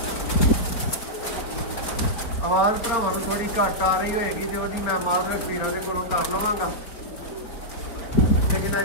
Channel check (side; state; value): right; late; 4.6 ms